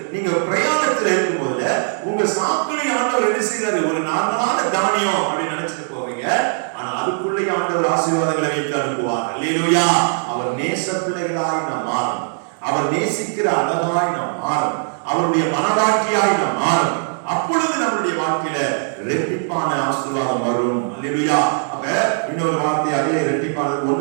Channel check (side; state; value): left; silent; digital silence